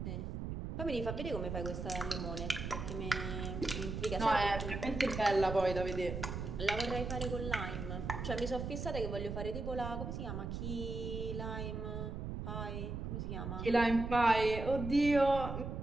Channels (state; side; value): noise; right; rumble, 5 dB below the sound